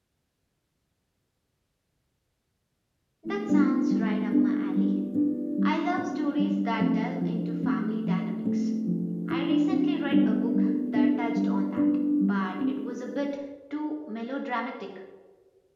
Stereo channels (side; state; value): both; identical; correlation 1.00